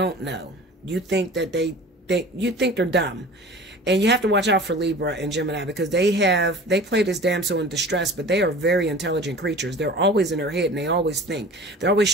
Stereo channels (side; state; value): both; normal; correlation 0.41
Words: know. You think that you think they're dumb. And you have to watch out for Libra and Gemini because they play this damsel in distress, but they are very intelligent creatures. They're always in their head and they always think. They're